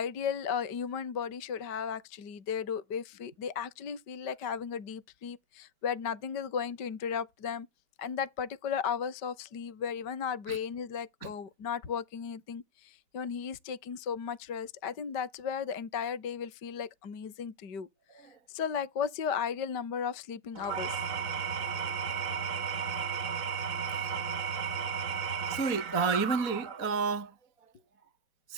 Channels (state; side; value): late; right; 4.2 ms